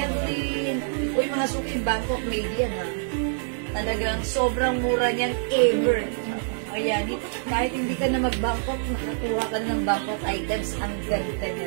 Uy, mga suki, Bangkok made yan, ha? Talagang sobrang mura niyan ever. Ayan, kahit hindi ka na mag-Bangkok, nakakuha ka na ng Bangkok items, ang ganda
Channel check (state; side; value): silent; left; digital silence